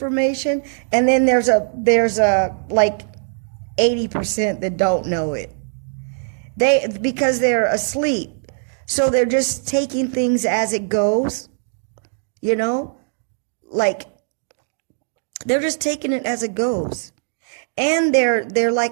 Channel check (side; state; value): left; silent; digital silence